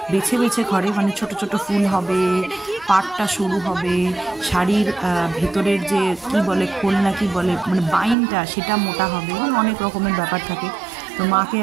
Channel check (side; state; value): left; drops out; at 8.2 s